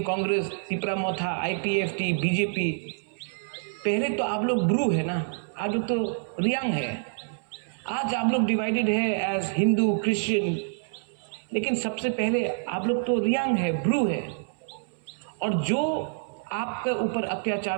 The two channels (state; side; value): silent; left; 60 dB below the other